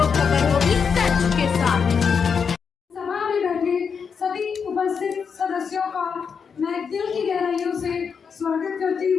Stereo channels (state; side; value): quieter; right; 6.2 dB